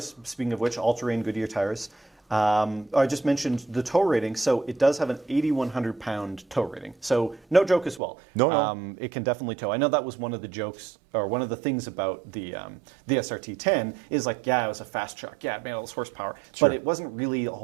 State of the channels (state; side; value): drops out; left; at 8.0 s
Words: speaking of which, all-terrain Goodyear tires. I just mentioned the tow rating, so it does have an 8,100-pound tow rating. So no joke as well. No. It can definitely tow. I know that was one of the jokes, or one of the things about the SRT-10 is like, yeah, it was a fast truck. Yeah, it made all this horsepower. Sure. But it wasn't really